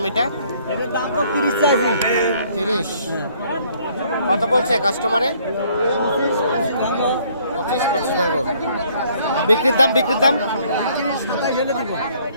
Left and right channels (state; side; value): inverted; both; correlation -0.62